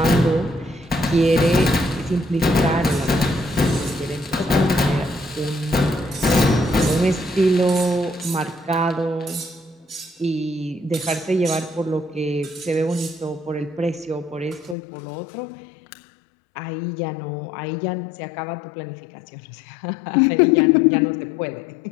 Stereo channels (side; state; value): right; drops out; at 14.8 s